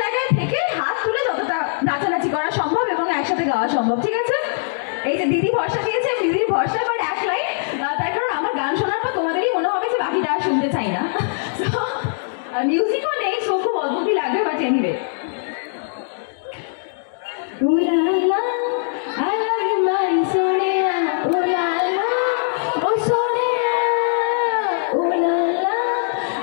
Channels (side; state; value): right; silent; digital silence